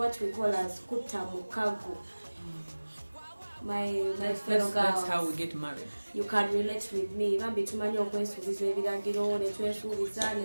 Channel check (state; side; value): inverted; both; correlation -1.00